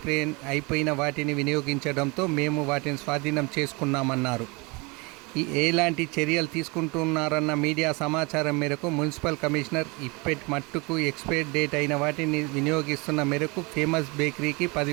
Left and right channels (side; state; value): left; quieter; 27.5 dB